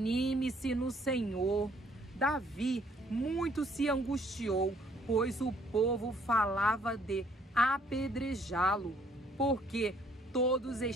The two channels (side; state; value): both; normal; correlation 0.63